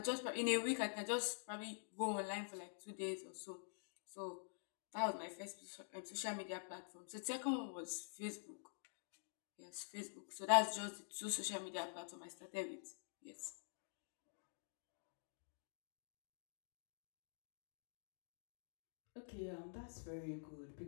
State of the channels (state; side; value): silent; right; digital silence